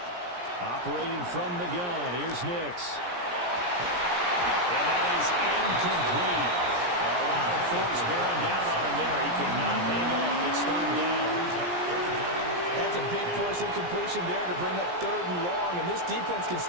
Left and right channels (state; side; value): late; left; 17 ms